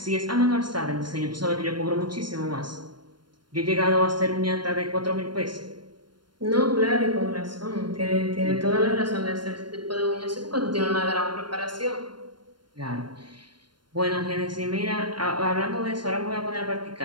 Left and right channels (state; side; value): late; left; 0.72 ms